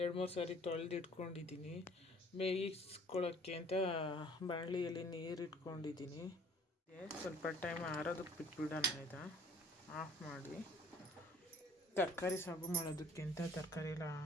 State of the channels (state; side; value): normal; both; correlation 0.55